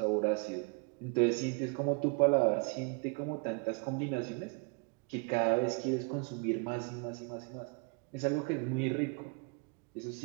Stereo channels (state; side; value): quieter; left; 33.4 dB